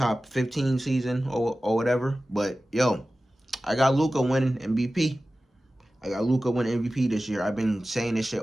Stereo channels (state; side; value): normal; both; correlation 0.95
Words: 15 season or whatever. But, yo, I got Luka winning MVP. I got Luka winning MVP this year. I've been saying this shit